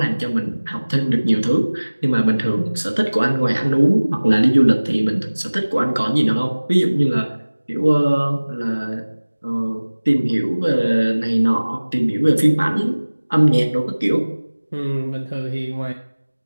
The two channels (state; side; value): inverted; both; correlation -1.00